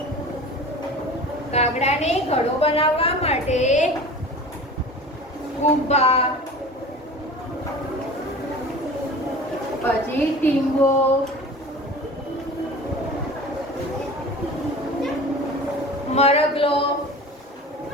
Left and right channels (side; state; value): both; normal; correlation 0.38